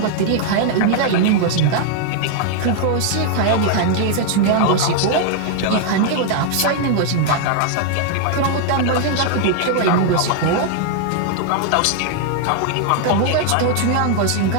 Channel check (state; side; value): different; both; correlation 0.00